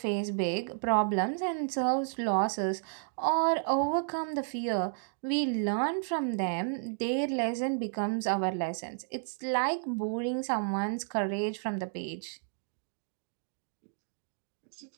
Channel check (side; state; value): left; silent; digital silence